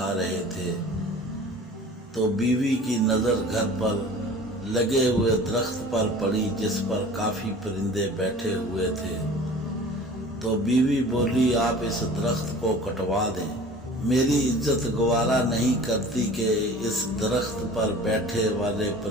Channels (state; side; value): normal; both; correlation 0.43